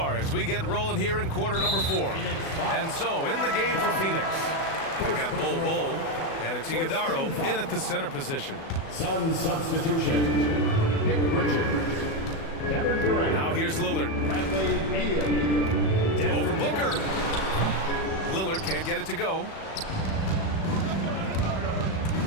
as we get rolling here in quarter number 4. And so, in the game for Phoenix, we've got Bull, and it's Iguodaro in at the center position. Sun substitution, Nick Richards. Kevin Durant. Now here's Lillard. Over Booker. Lillard can't get it to go.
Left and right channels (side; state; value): right; late; 37 ms